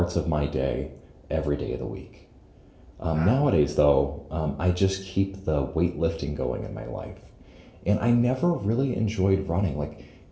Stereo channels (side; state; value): both; identical; correlation 1.00